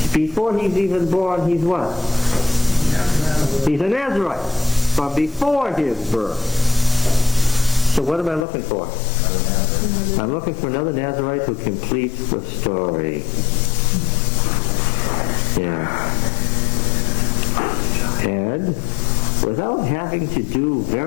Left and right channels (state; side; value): drops out; right; at 8.5 s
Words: before he's even born, he's what? He's a Nazarite from before his birth. So what am I looking for? I'm looking for another Nazarite who completes the story. Yeah. And without having to do